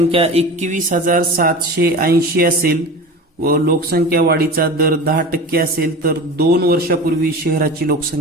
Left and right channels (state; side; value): normal; both; correlation 0.33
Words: 21,780 असेल व लोकसंख्या वाढीचा दर 10% असेल तर 2 वर्षापूर्वी शहराची